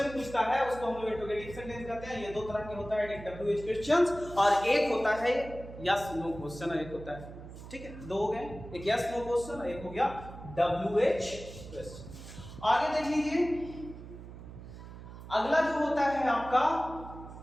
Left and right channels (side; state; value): right; noise; hum, 14 dB below the sound